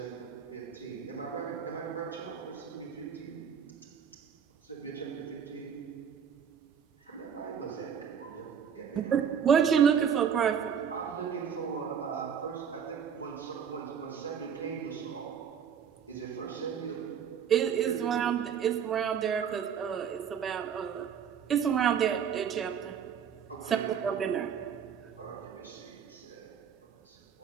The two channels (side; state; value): left; quieter; 7.8 dB